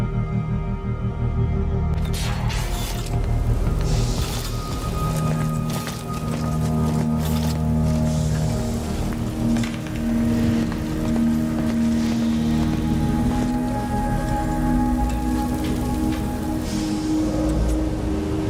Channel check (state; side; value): identical; both; correlation 1.00